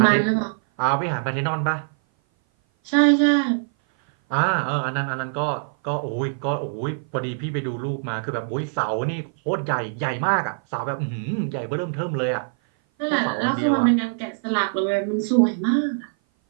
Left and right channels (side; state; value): left; silent; 57 dB below the other